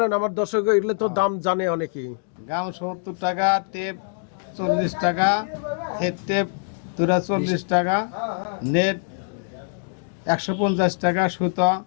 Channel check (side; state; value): right; silent; digital silence